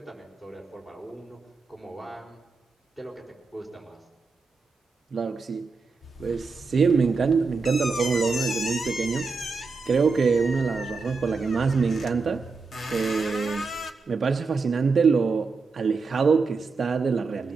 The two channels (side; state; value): left; quieter; 4.4 dB